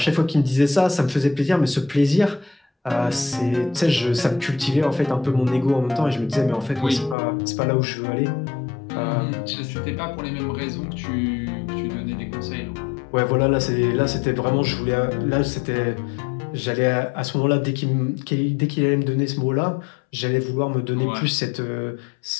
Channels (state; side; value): drops out; right; at 7.2 s